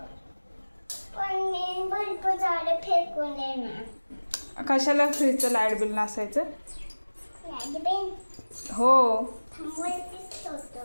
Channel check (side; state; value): both; inverted; correlation -1.00